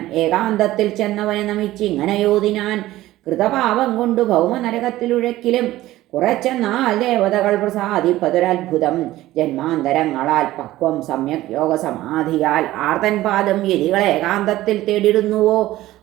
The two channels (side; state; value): left; quieter; 15.9 dB